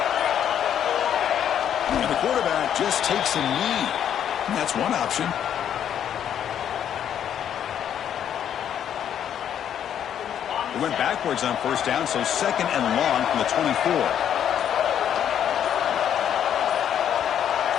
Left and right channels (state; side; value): quieter; right; 9.5 dB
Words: Just takes a knee. And that's one option. He went backwards on first down, so second and long from the 24.